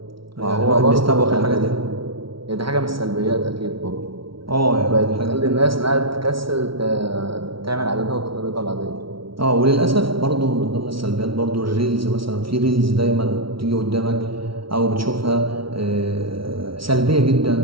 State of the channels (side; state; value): left; late; 0.75 ms